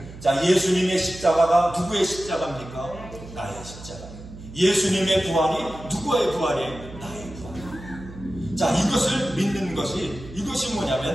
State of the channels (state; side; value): noise; right; hum, 15 dB below the sound